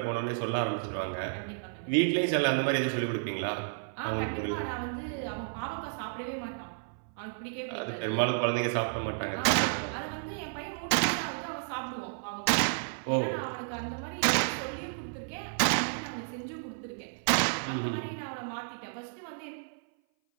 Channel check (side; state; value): left; silent; 57 dB below the other